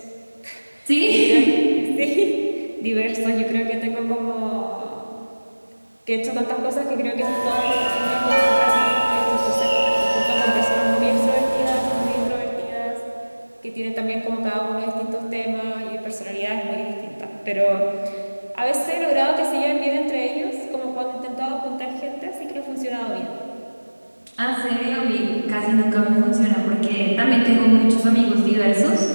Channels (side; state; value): both; inverted; correlation -1.00